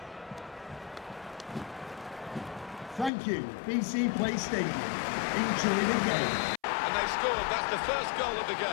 Thank you, BC Play Stadium. Enjoy the game. And they've scored. That's the first goal of the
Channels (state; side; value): drops out; right; at 3.1 s